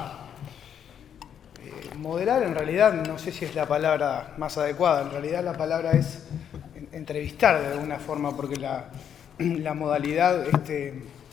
moderar, en realidad no sé si es la palabra más adecuada, en realidad la palabra es entrevistar de alguna forma, porque la modalidad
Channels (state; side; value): quieter; right; 8.7 dB